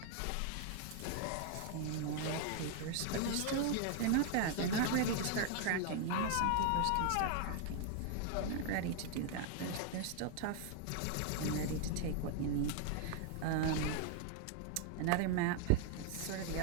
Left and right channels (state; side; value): different; both; correlation 0.00